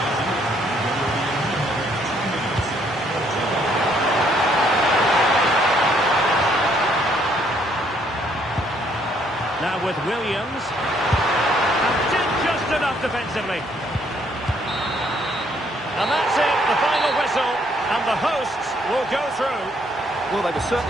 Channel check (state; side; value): normal; both; correlation 0.67